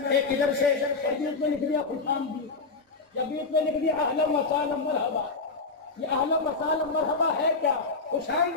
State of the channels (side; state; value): right; quieter; 4.1 dB